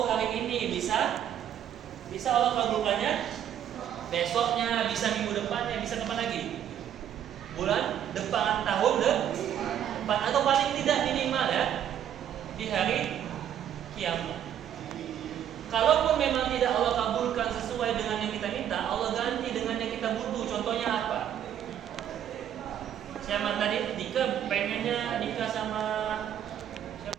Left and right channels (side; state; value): left; quieter; 10.0 dB